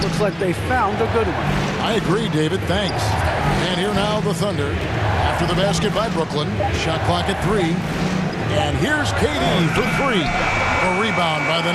looks like they found a good one. I agree, David. Thanks. And here now the Thunder. After the basket by Brooklyn. Shot clock at 3. And here's KD for 3. A rebound by the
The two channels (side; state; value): both; identical; correlation 1.00